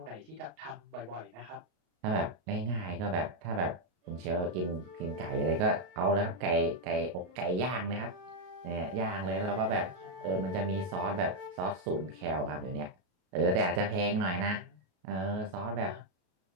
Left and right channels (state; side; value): late; left; 33 ms